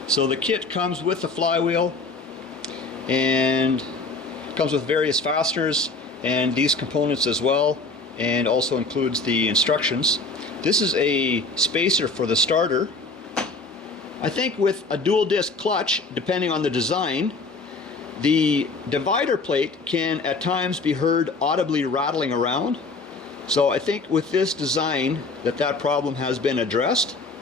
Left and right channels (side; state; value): right; quieter; 3.6 dB